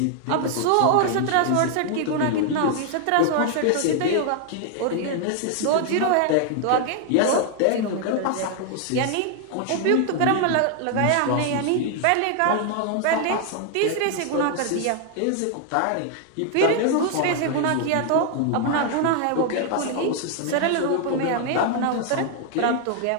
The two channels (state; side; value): different; both; correlation 0.00